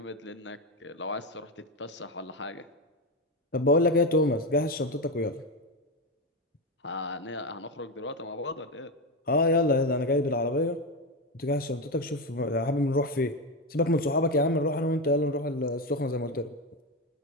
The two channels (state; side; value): normal; both; correlation 0.13